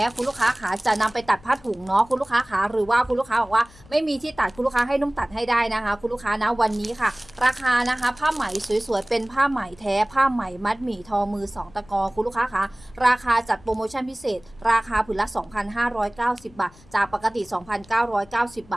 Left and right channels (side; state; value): left; noise; rumble, 24 dB below the sound